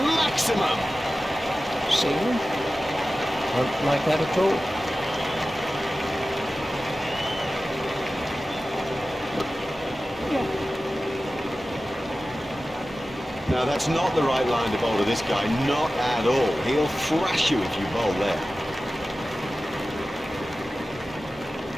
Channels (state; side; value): normal; both; correlation 0.95